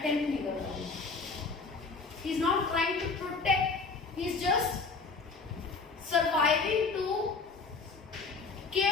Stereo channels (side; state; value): right; quieter; 4.3 dB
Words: नहीं कर रहा हूँ। He is not trying to protect, he is just surviving to